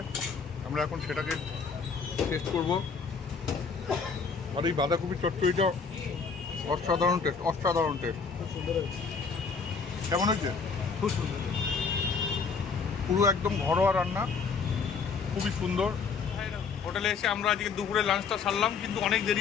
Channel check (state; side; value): quieter; right; 5.4 dB